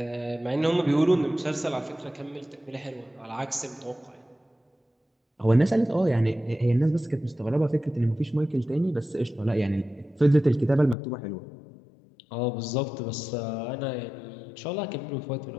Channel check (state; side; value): drops out; right; at 11.0 s